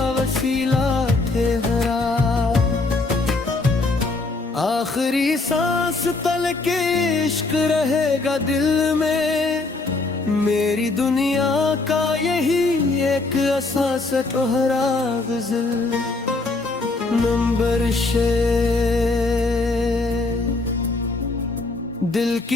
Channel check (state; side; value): quieter; right; 3.4 dB